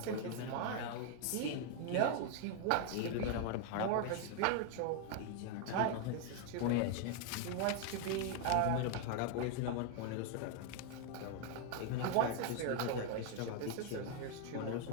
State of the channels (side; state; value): both; different; correlation 0.00